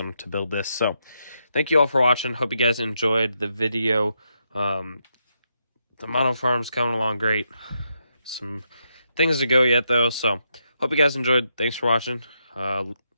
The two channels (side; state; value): both; inverted; correlation -0.81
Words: to build this. So thank you all for watching. Hope you guys enjoyed the video. The model farm's coming along great. Some things to go yet though, so hope you guys enjoyed. Thanks for watching.